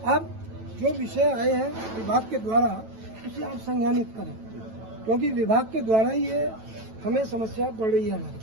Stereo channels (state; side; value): late; left; 9.1 ms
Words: अब जो विषय आए हैं विभाग के द्वारा, उसे आप संज्ञानित करें, क्योंकि विभाग के द्वारा ही ये हमें समस्या बढ़ रही है